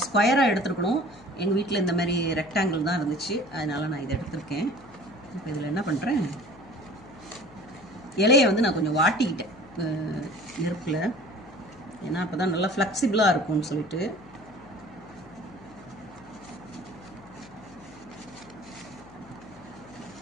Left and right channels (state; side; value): noise; left; hum, 21 dB below the sound